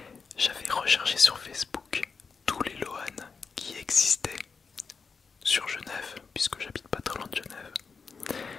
j'avais recherché sur Facebook tous les Lohan qui existaient sur Genève, puisque j'habite pas très loin de Genève.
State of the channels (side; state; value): right; quieter; 5.2 dB